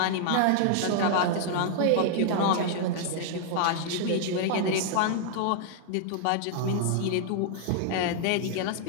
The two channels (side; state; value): both; different; correlation -0.01